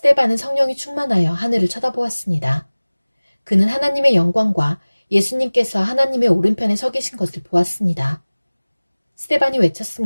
성령이 충만하여 하늘을 쳐다보았습니다. 그는 하나님의 영광과 예수님께서 하나님의 오른편에 서 계신 것을 보았습니다. 스데반이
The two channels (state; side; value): inverted; both; correlation -1.00